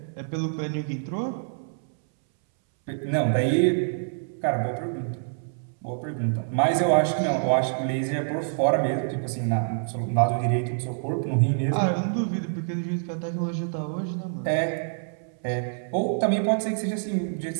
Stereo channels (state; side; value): silent; left; 61 dB below the other